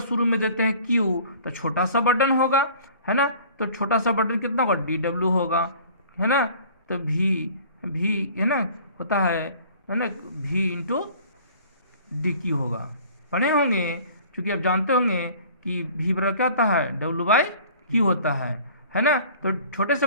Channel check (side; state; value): both; inverted; correlation -0.49